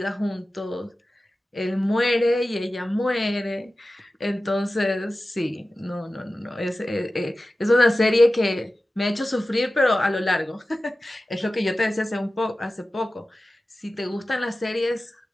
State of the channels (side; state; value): both; normal; correlation 0.95